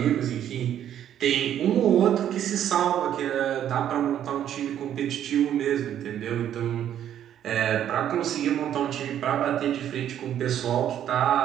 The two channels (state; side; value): quieter; left; 10.5 dB